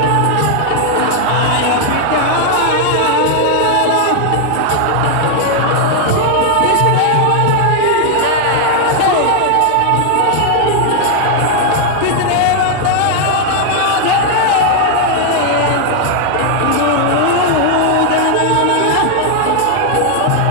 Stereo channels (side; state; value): both; different; correlation 0.00